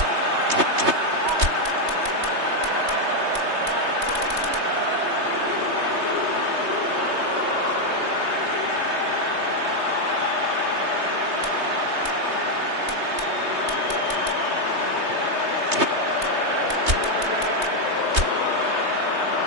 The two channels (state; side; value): late; left; 3.2 ms